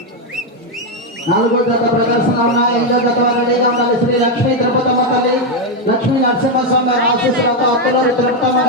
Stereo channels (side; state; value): both; normal; correlation 0.04